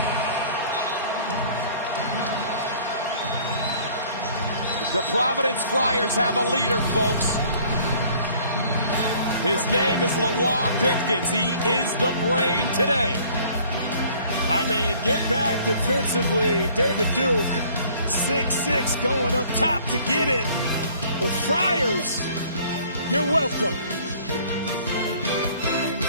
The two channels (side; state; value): both; inverted; correlation -0.55